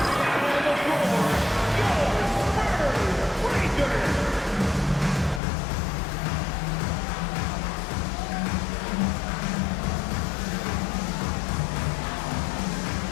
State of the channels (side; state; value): right; drops out; at 5.4 s